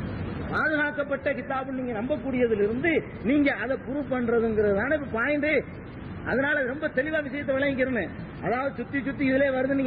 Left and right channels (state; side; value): identical; both; correlation 1.00